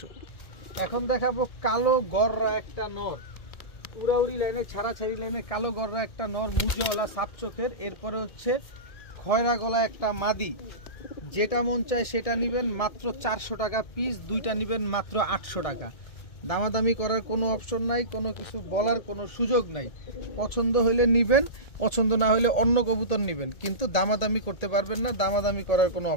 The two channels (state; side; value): late; right; 1.7 ms